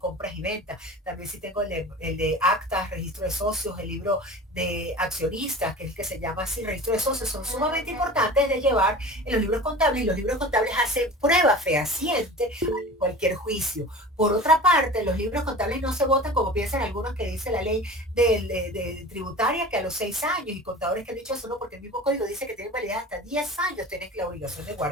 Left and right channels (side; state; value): both; normal; correlation 0.37